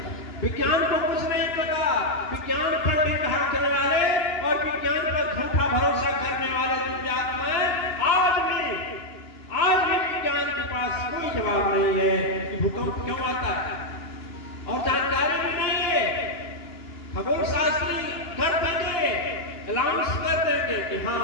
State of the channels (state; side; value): late; right; 2.9 ms